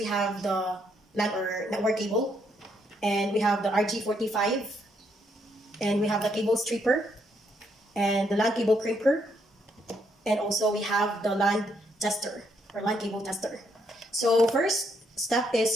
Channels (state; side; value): normal; both; correlation 0.74